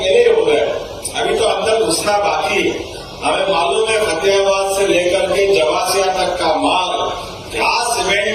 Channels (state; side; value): identical; both; correlation 1.00